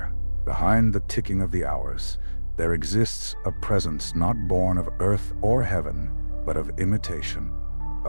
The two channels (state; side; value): inverted; both; correlation -1.00